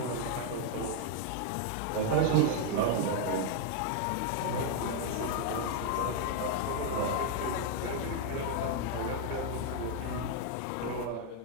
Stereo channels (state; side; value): different; both; correlation 0.00